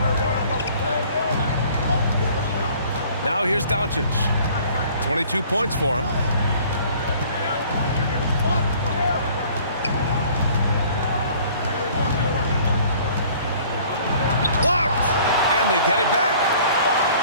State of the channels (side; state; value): both; inverted; correlation -0.53